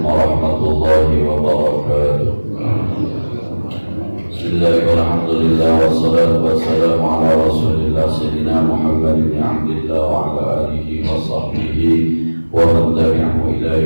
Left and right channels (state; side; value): inverted; both; correlation -1.00